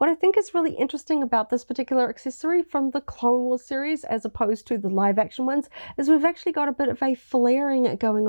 I think is really interesting about this particular accessory from the Clone Wars series as opposed to the live action ones is we've actually got a bit of a flaring going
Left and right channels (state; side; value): inverted; both; correlation -1.00